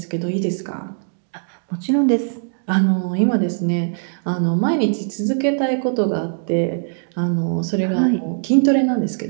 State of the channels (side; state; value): left; silent; digital silence